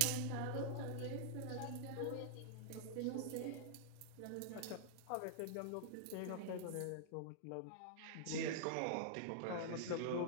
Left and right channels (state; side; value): different; both; correlation -0.01